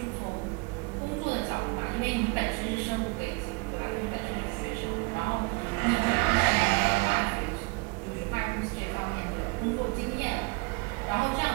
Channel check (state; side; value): quieter; left; 28.4 dB